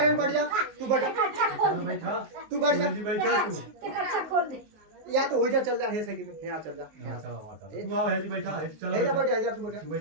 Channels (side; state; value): left; late; 19 ms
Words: बैठ जा, तू बैठ, तू बैठ जा, या तो हो जा, चल जा, है सही में, यहाँ चल जा, तू आओ, है जी बैठा है, चल जा, बैठ जा, तू